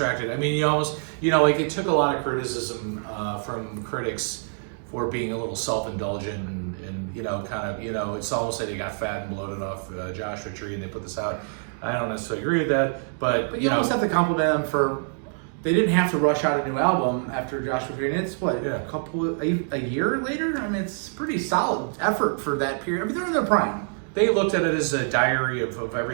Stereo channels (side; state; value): left; silent; digital silence